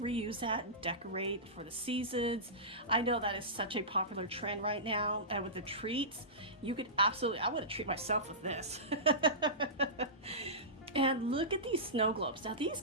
that and decorate for the seasons. I know that is such a popular trend right now, and with the treats, you could absolutely, I want to treat myself with this. And look at these snow globes. Now these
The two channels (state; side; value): normal; both; correlation -0.20